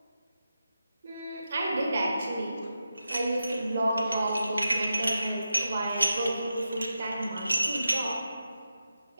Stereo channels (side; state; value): both; inverted; correlation -0.89